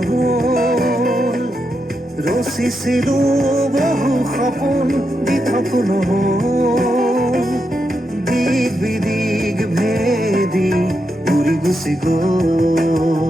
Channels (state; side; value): normal; both; correlation 0.85